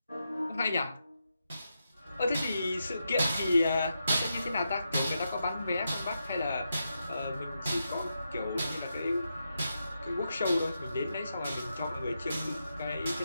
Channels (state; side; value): inverted; both; correlation -0.86